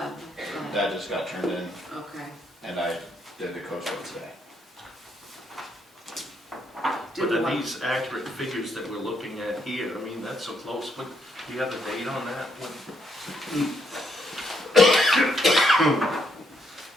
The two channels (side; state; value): both; normal; correlation 0.75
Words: That just got turned in, Okay. and I did the coach vote today. Did But the are one- these accurate figures that we're looking at here? I mean, that's so close, but do you have the date on that?